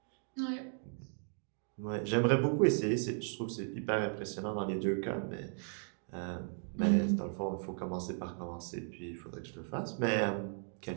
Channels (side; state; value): left; silent; 54 dB below the other